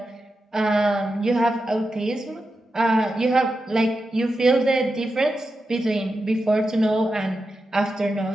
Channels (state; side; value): normal; both; correlation 0.89